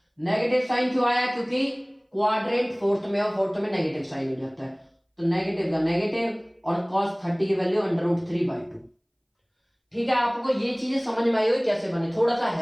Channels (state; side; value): identical; both; correlation 1.00